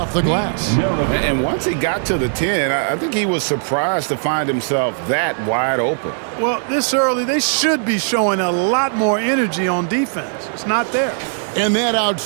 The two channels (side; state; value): left; silent; digital silence